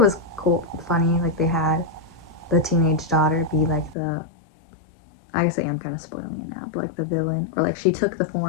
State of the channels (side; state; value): right; drops out; at 4.0 s